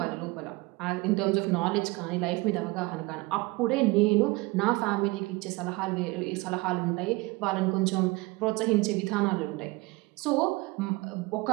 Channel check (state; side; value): quieter; left; 23.5 dB